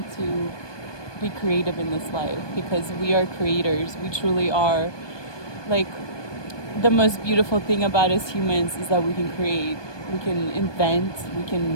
to be creative in this life because we are creators. We truly are. Like, the most beautiful thing about us humans is that we can create, we can invent, we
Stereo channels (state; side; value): late; right; 1.2 ms